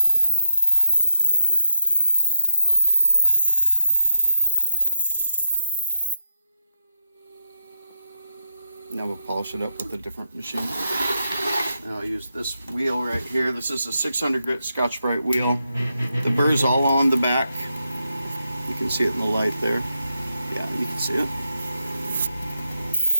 around. Now we'll polish it up with a different machine. Now I'll use this wheel right here. This is a 600 grit Scotch-Brite wheel. The burr's all on the back. You can see it in the light there. Yeah, you can see it.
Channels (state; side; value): inverted; both; correlation -0.85